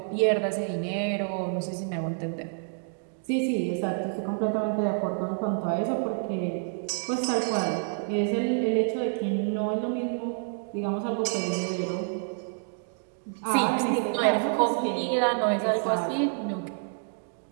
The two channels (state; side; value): silent; left; 59 dB below the other